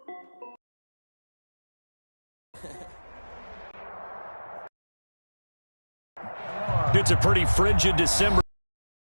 It's a pretty frigid December.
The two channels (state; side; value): inverted; both; correlation -1.00